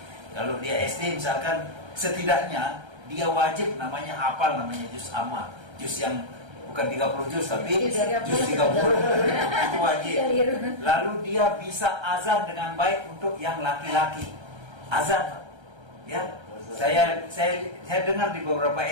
Kalau dia SD misalkan, setidaknya dia wajib namanya hafal namanya juz amma, juz yang bukan 30 juz tapi juz 30 itu wajib. Lalu dia bisa azan dengan baik untuk yang laki-laki, azan. Ya, saya dengar di beberapa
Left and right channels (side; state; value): left; late; 1.3 ms